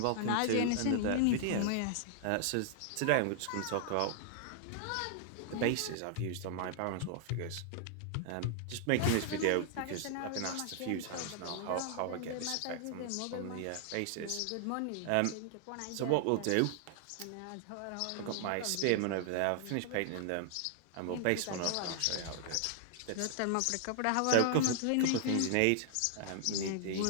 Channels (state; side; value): different; both; correlation 0.00